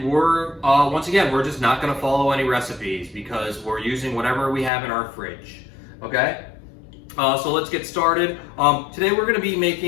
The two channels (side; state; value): right; drops out; at 4.7 s